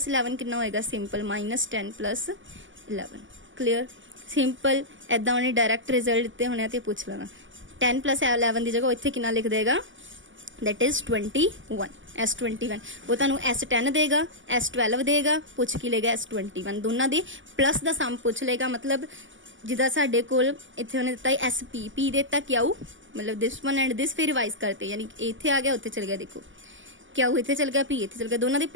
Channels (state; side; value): late; left; 0.56 ms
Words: 11 कितना होएगा, सिंपल -10 + 11। क्लियर, सिंपल ऐदा उन्हें डायरैक्ट रिजल्ट दिते होने तो पूछ लेना। 10 + 11 की जगह इत्थे कितना लिख देगा, दैट इज 21। S21 वो तुहानू S10 देगा, S12 देगा, पूछ की लेगा S21, दोनों दे प्लस का सम पूछ लेगा। मतलब जिदा साडे कोल इत्थे उन्हें दिता SP, P देता क्यू, मतलब दिस वन एंड दिस, फिर रिवाइज करते, यानी इत्थे आ गया उत्थे चल गया, देखो क्यू इत्थे चल गया, P इत्थे चल गया, दोनों दे